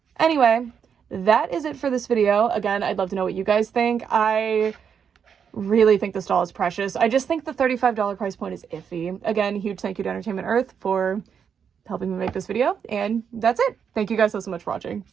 Anyway, that is it for this video. Again, I'd love to know what you guys think. I really think this doll is precious. I just think the $35 price point is iffy. Again, huge thank you to Entertainment Earth for helping me make this video, and that's it. Thank you guys so much for watching.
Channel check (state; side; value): quieter; left; 7.3 dB